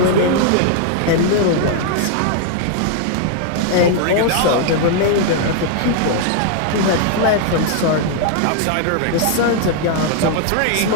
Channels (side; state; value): both; different; correlation 0.00